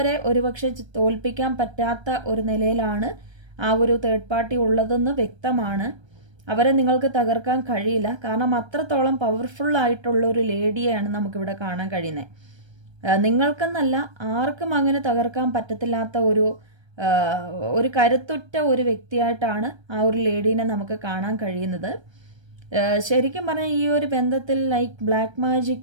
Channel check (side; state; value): left; late; 1.3 ms